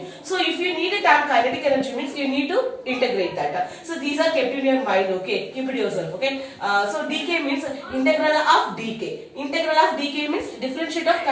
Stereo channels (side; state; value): both; identical; correlation 1.00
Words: So if you need a term kinetic energy means you need to integrate that. So these are kept in your mind. Okay, keep it yourself. Okay, so dk means integral of dk. Integral of dk means differentiate of